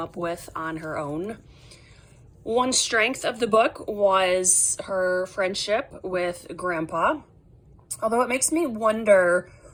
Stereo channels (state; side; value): identical; both; correlation 1.00